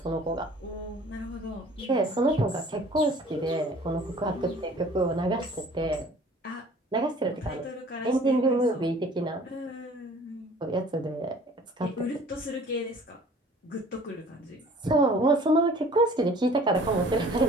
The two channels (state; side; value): normal; both; correlation 0.50